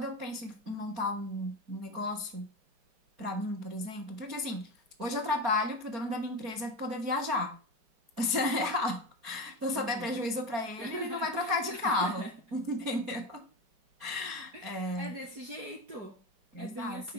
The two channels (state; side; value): late; left; 4.4 ms